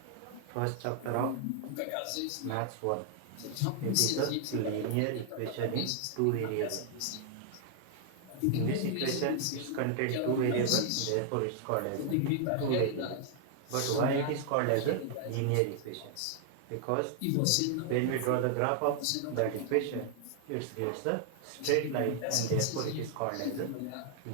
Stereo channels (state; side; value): different; both; correlation 0.00